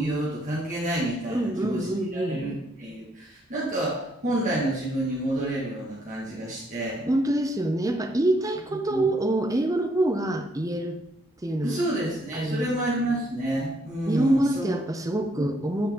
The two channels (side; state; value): both; normal; correlation 0.71